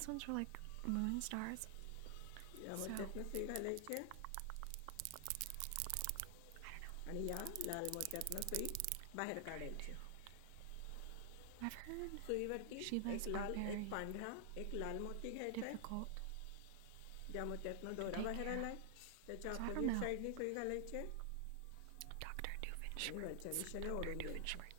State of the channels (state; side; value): different; both; correlation 0.00